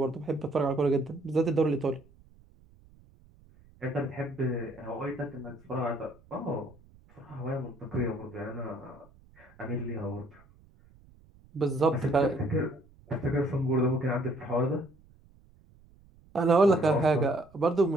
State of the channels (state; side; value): noise; right; rumble, 27 dB below the sound